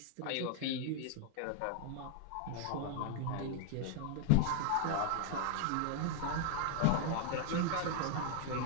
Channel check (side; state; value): both; different; correlation 0.00